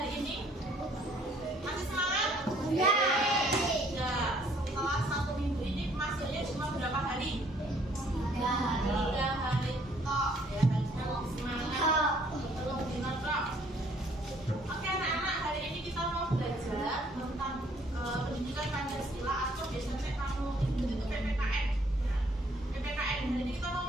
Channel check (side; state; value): both; normal; correlation 0.62